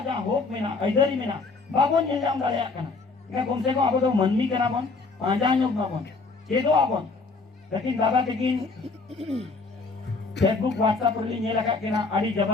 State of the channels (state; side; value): quieter; right; 4.0 dB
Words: जा होप में ना इधर में ना बाबो नेलम दाड़े कना के कम से कम आबो तो मनमी कना बन पांजा योग ना बन चेदो आबन लेकिन दादा लेकिन फेसबुक व्हाट्सएप री नेला का केना आडी